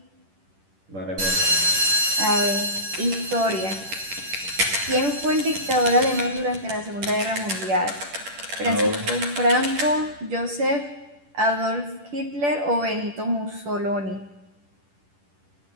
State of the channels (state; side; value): late; left; 10 ms